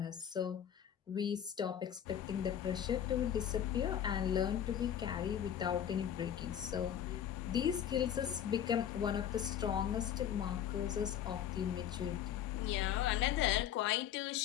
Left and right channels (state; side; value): quieter; right; 9.8 dB